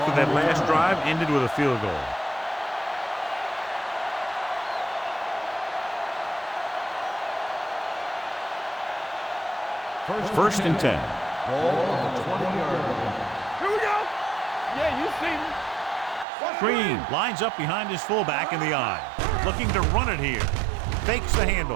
that last drive ended with a field goal. First and 10. Ball on the 20-yard line. Here we go. Yeah, you see me. Green lines up behind his fullback in the eye. looking to run it here. Fakes the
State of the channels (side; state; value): left; drops out; at 16.2 s